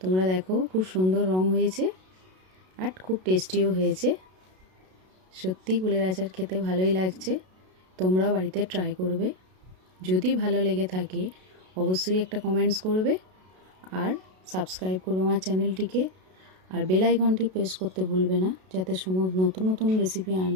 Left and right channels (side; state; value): left; late; 32 ms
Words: তোমরা দেখো খুব সুন্দর রং হয়েছে আর খুব টেস্টিও হয়েছে। সত্যি কুলের আচার খেতে ভালোই লাগছে। তোমরাও বাড়িতে ট্রাই করবে। যদি ভালো লেগে থাকে অবশ্যই একটা কমেন্টস করবে আর সাবস্ক্রাইব করবে আমার চ্যানেলটিকে, আর বেল আইকনটি প্রেস করতে ভুলবে না, যাতে নতুন নতুন রেসিপি